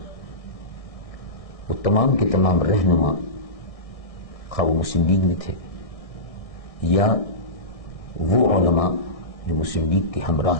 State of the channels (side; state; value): right; late; 1.6 ms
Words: وہ تمام کے تمام رہنما خواہ وہ مسلم لیگ میں تھے یا وہ علماء جو مسلم لیگ کے ہمراہ